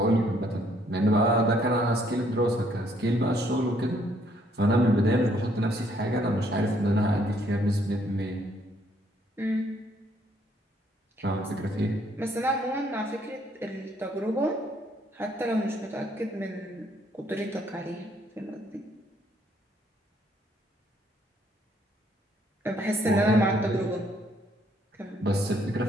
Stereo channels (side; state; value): both; normal; correlation 0.67